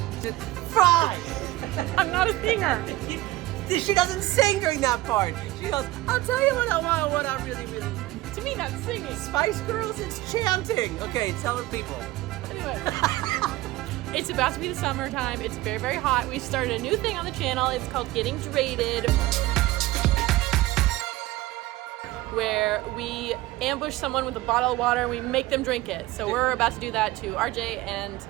Fries! I'm not a singer. She doesn't sing during that part. She goes, I'll tell you what I want, what I really, really want. To me, that's singing. Spice Girls, it's chanting. Okay, tell the people. Anyway, it's about to be the summertime. It's very, very hot. We started a new thing on the channel. It's called Getting Drated, where we ambush someone with a bottle of water and we make them drink it. So we're about to do that to Rjay and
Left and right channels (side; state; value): left; quieter; 18.0 dB